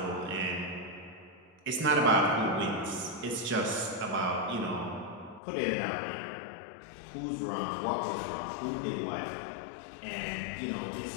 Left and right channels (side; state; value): right; drops out; at 5.4 s